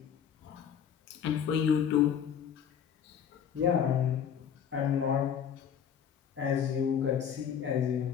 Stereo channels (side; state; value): right; quieter; 8.3 dB